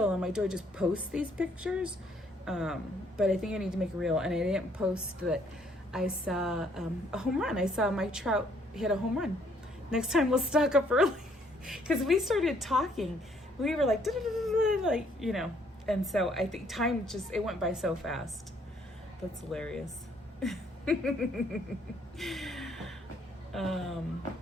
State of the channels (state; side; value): normal; both; correlation 0.66